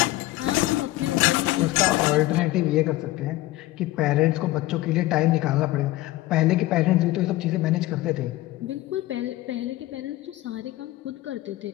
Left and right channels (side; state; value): right; quieter; 17.3 dB